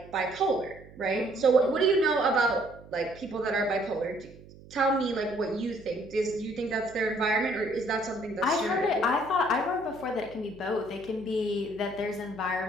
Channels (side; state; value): right; noise; hum, 20 dB below the sound